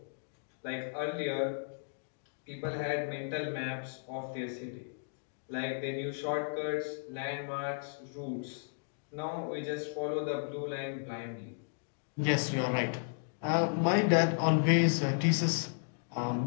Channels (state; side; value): silent; right; digital silence